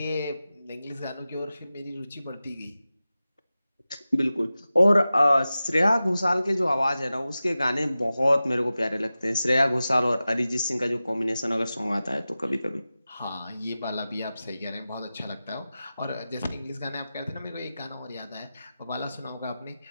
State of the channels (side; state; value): both; inverted; correlation -0.95